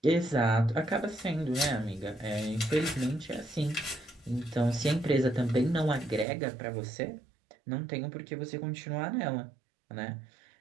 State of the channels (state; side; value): drops out; left; at 6.2 s